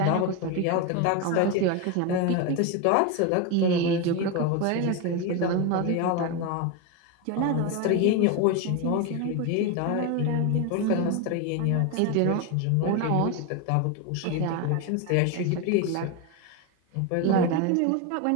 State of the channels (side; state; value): both; different; correlation 0.02